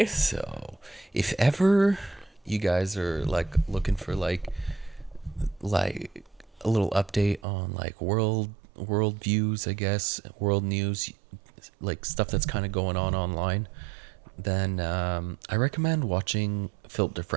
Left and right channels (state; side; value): drops out; left; at 7.4 s